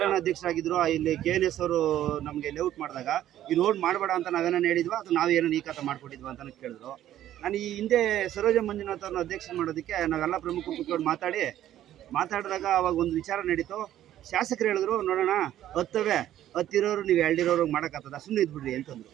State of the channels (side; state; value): left; quieter; 12.3 dB